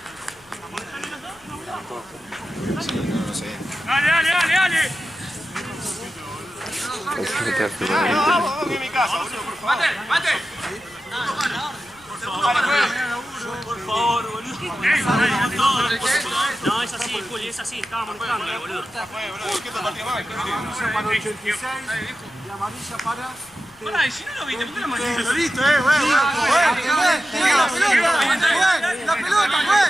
Dale. Mate. Por favor, boludo. No, es así, Juli, es así. Estaba molestando, boludo. Para 86 y amarilla para... Pará, y si no lo viste, ¿por qué lo mandaste? Lo viste, la pelota,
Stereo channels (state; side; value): noise; left; rumble, 29 dB below the sound